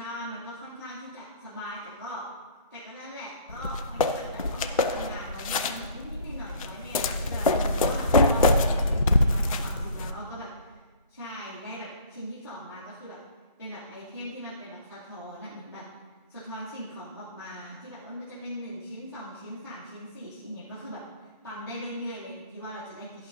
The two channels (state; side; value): inverted; both; correlation -0.50